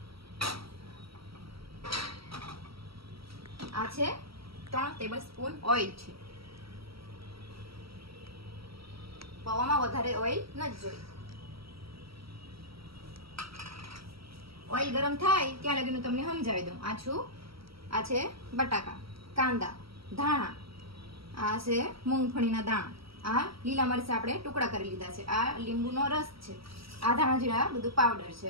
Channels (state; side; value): late; left; 0.75 ms